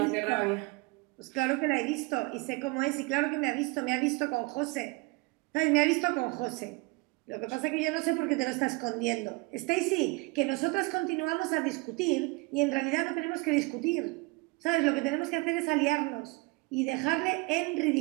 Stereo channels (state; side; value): quieter; left; 25.9 dB